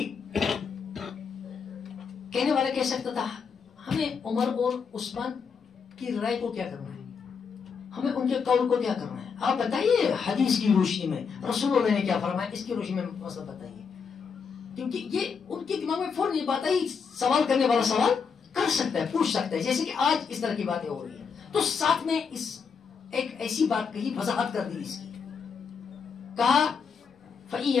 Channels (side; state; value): right; quieter; 6.0 dB